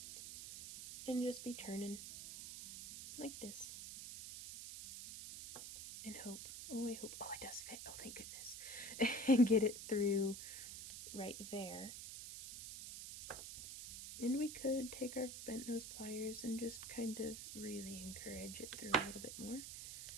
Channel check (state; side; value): noise; right; hiss, 8 dB below the sound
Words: and just be turning like this and hope, oh it does fit, oh thank goodness, and get it through right there. And we could take our bent nose pliers and just kind of really encourage it through a little bit more.